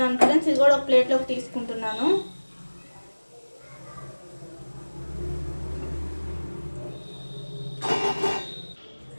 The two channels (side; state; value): both; inverted; correlation -1.00